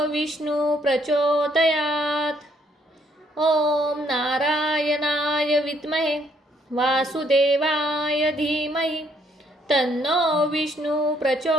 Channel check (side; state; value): both; normal; correlation 0.69